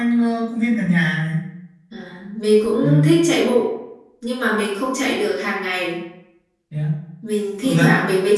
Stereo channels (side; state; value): both; identical; correlation 1.00